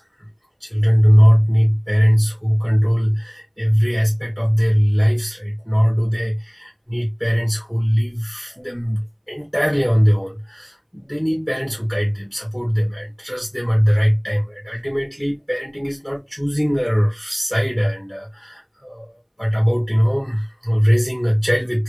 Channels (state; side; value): identical; both; correlation 1.00